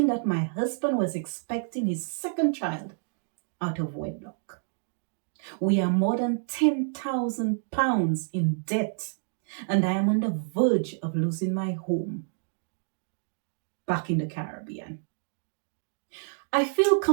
that my husband was expecting his second child out of wedlock. We are more than £10,000 in debt, and I am on the verge of losing my home back in the Caribbean. I feel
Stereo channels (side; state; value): left; silent; digital silence